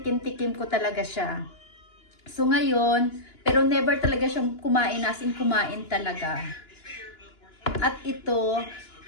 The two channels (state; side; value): late; right; 2.9 ms